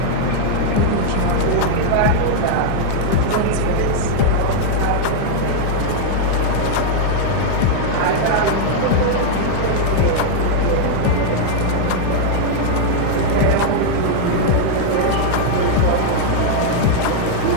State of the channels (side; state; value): both; different; correlation -0.01